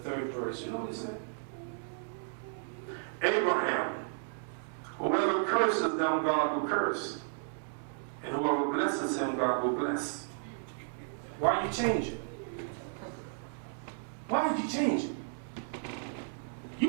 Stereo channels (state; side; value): silent; left; digital silence